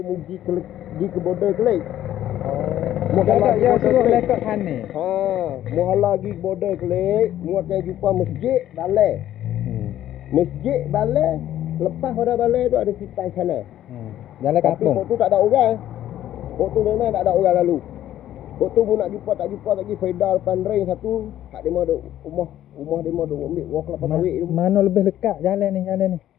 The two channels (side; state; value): right; quieter; 12.4 dB